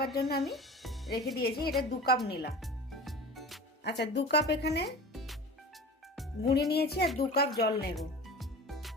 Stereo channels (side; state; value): both; normal; correlation 0.37